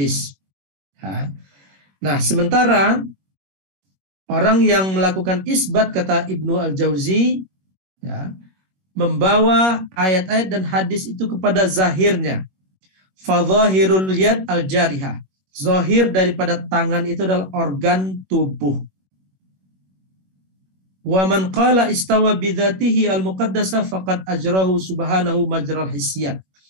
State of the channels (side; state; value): left; late; 21 ms